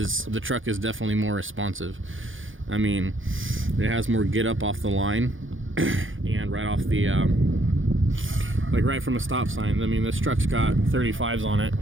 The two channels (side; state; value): left; late; 0.58 ms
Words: the truck is definitely more responsive. I mean, it has more get up off the line and right off the like right from a stop sign. I mean, this truck's got 35s on it,